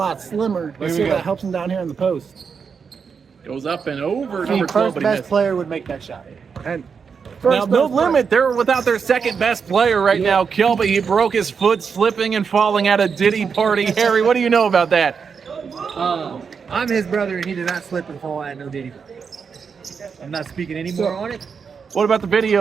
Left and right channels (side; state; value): left; quieter; 6.0 dB